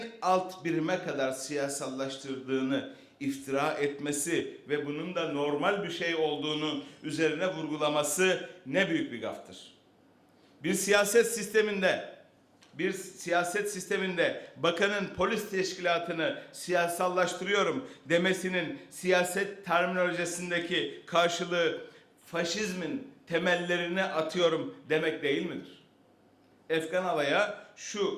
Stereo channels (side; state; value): both; identical; correlation 1.00